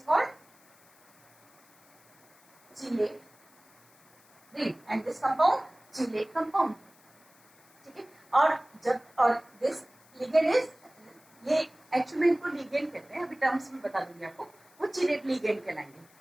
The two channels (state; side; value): noise; left; hiss, 29 dB below the sound